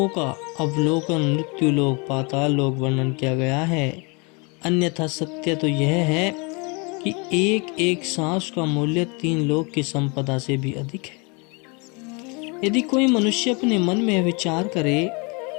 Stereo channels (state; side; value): quieter; right; 30.7 dB